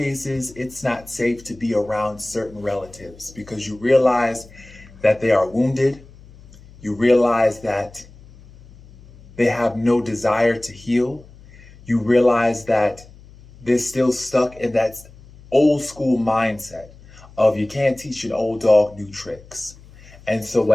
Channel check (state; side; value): noise; left; hum, 22 dB below the sound